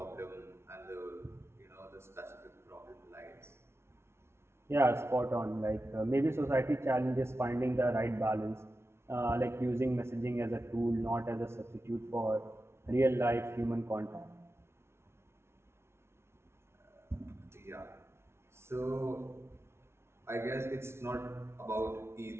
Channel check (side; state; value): left; late; 0.12 ms